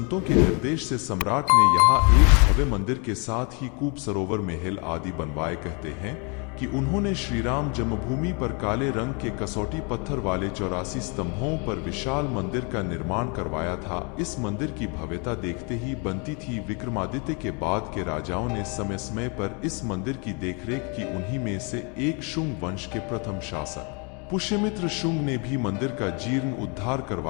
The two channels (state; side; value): quieter; right; 33.7 dB